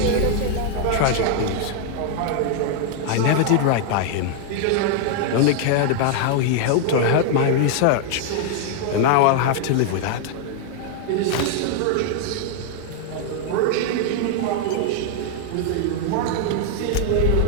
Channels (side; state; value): both; different; correlation 0.00